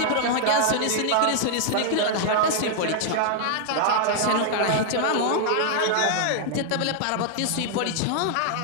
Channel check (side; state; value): both; different; correlation -0.01